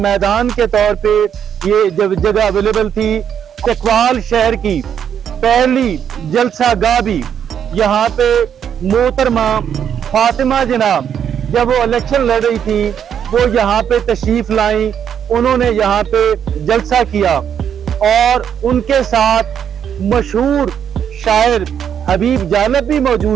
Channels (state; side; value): quieter; left; 8.6 dB